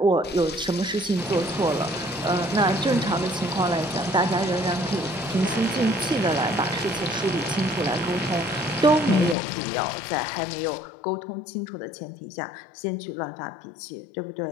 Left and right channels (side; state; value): right; drops out; at 9.3 s